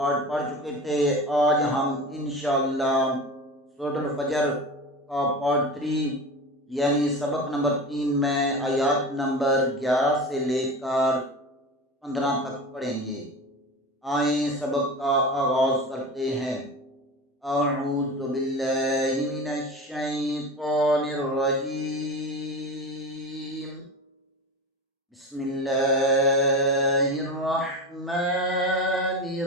پڑھ چکے تھے۔ آج ہم انشاءاللہ سورۃ الفجر کا پارٹ 3 یعنی سبق نمبر 3 میں آیات نمبر 11 سے لے کر 15 تک پڑھیں گے۔ آئیں سبق کا آغاز کرتے ہیں۔ اعوذ باللہ من الشیطان الرجیم، بسم اللہ الرحمن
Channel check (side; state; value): both; normal; correlation 0.29